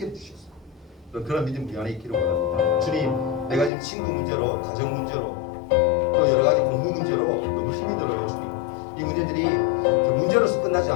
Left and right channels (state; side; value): drops out; right; at 3.7 s